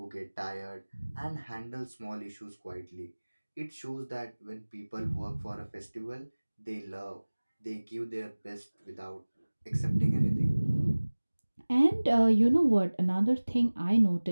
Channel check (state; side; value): inverted; both; correlation -1.00